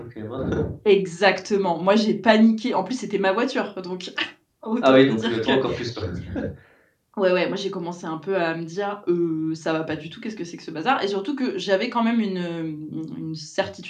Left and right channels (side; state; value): both; identical; correlation 1.00